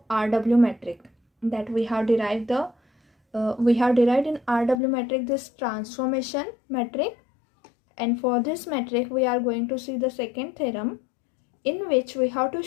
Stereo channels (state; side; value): drops out; right; at 4.8 s